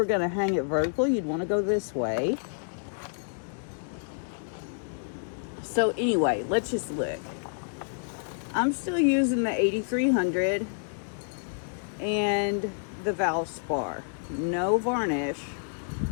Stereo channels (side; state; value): right; silent; digital silence